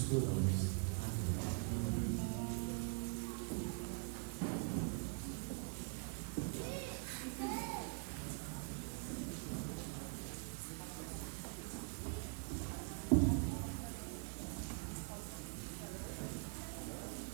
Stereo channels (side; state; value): left; quieter; 36.4 dB